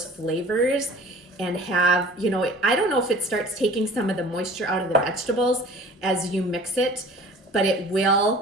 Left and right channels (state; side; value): normal; both; correlation 0.46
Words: flavors and have, you know, I don't know if it starts taking some of the moisture out of the vegetables as you mix it, but it